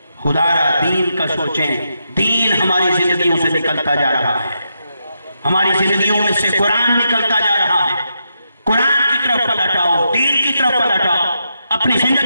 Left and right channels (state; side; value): inverted; both; correlation -0.83